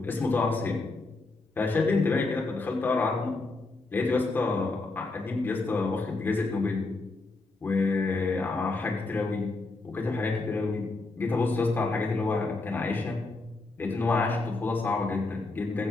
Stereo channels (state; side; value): quieter; right; 3.3 dB